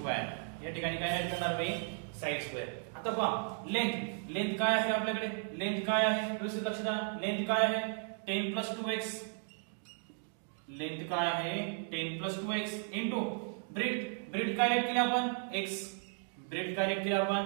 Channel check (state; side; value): silent; left; 54 dB below the other